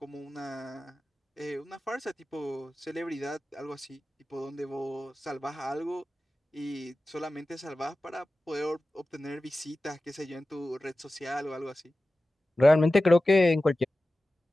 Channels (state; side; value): normal; both; correlation 0.95